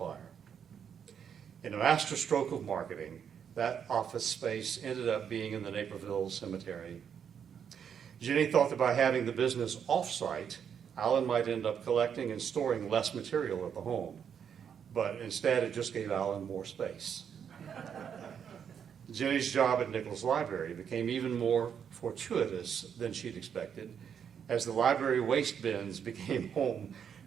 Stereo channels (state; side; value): quieter; left; 7.8 dB